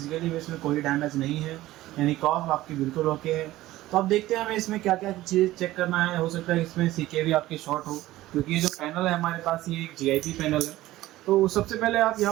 इसमें कोई डैमेज नहीं है, यानी कॉफ आपकी बिल्कुल ओके है। तो अब देखते हैं हमें इसमें क्या क्या चीज़ चेक करना है। हो सकता है इसमें सीके भी आपके शॉर्ट हो, क्योंकि ये जो पैनल है हमारे पास ये एक GIP पैनल है। तो सबसे पहले आप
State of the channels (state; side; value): quieter; left; 16.2 dB